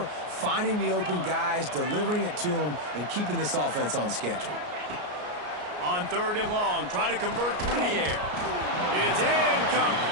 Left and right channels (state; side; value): late; left; 33 ms